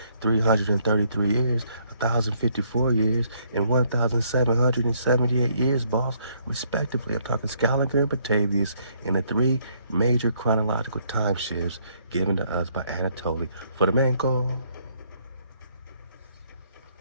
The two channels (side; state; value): both; inverted; correlation -0.68